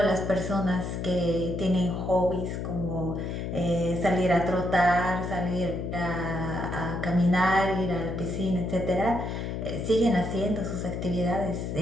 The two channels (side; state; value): left; noise; hum, 4 dB below the sound